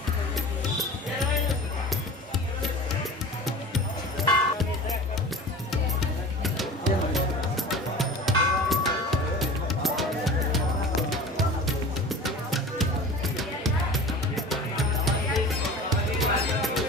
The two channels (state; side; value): normal; both; correlation 0.37